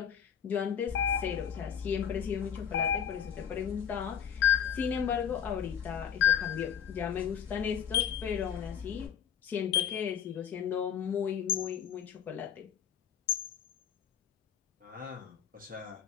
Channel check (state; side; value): quieter; right; 8.7 dB